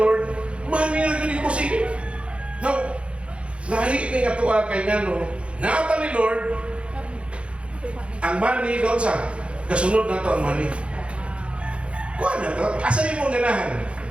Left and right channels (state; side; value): late; left; 0.059 ms